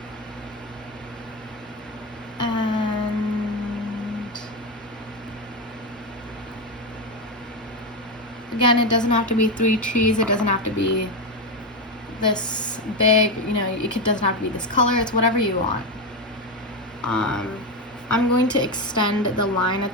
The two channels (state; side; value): normal; both; correlation 0.11